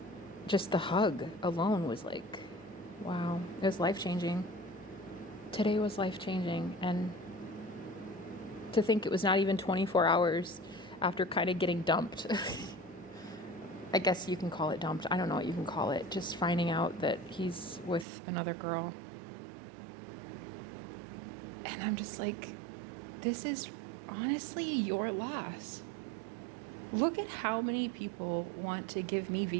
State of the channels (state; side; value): drops out; left; at 18.1 s